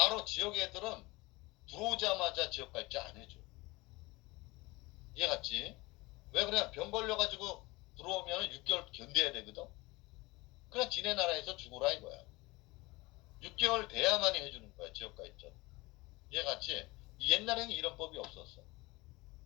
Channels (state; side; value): quieter; right; 22.4 dB